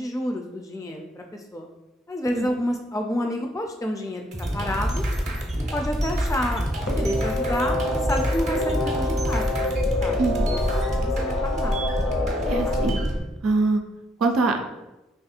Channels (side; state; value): both; normal; correlation 0.71